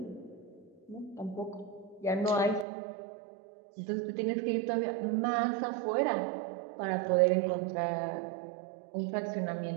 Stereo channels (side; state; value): left; drops out; at 2.7 s